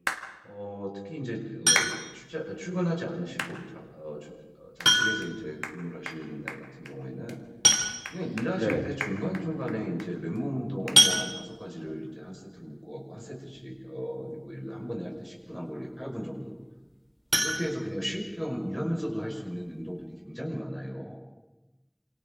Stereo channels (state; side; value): identical; both; correlation 1.00